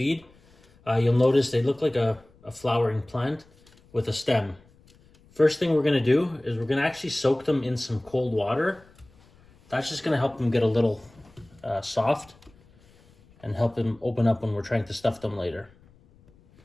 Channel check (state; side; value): noise; left; rumble, 29 dB below the sound